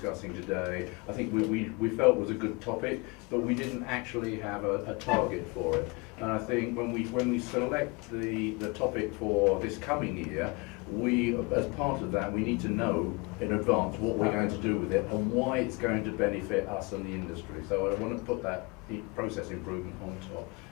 today, I think we felt was a good topic, but we didn't actually have a target for it. And I think when we select the topic for this coming year, as part of that, we need to know in advance what we're going to do with it and why it's going to benefit us and the industry. So I want to put that process improvement on top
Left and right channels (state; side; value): quieter; right; 28.0 dB